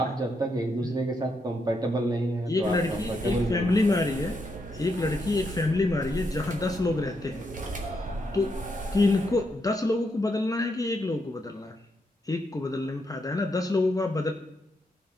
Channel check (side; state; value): both; normal; correlation 0.80